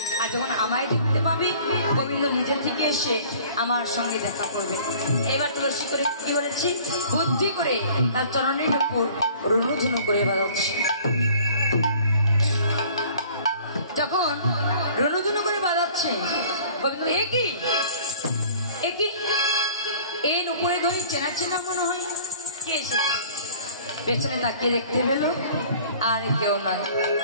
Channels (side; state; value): both; inverted; correlation -0.50